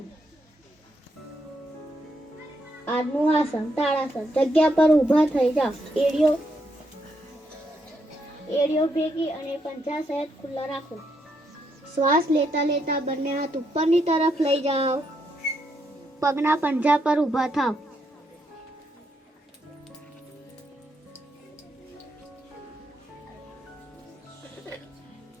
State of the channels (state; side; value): normal; both; correlation 0.78